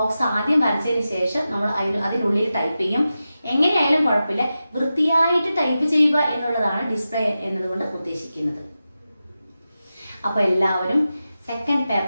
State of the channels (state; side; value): inverted; both; correlation -0.92